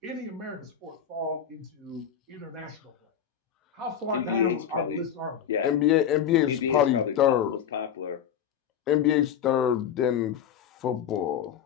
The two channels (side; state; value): right; quieter; 8.8 dB